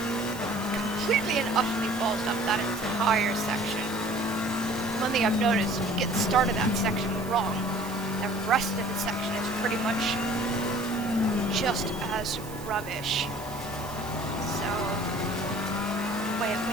Completely and utterly balls up that entire section. One thing I've noticed, if you get the start of that section wrong, the rest of the section is pretty much just as rubbish. So, when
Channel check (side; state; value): right; noise; hiss, 16 dB below the sound